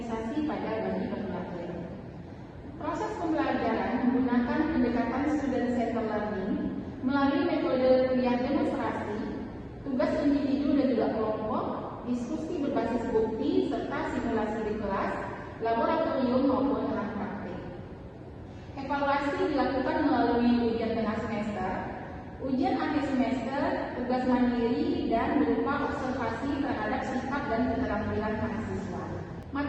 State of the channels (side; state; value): both; identical; correlation 1.00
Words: pada bayi baru lahir. Proses pembelajaran menggunakan pendekatan student-centered learning melalui metode kuliah demonstrasi, tugas individu dan juga kelompok, diskusi berbasis bukti, serta simulasi di kelas, laboratorium maupun lahan praktik. Evaluasi dilakukan melalui ujian tengah semester, ujian akhir semester, tugas mandiri, dan berupa observasi terhadap sikap dan keterampilan mahasiswa.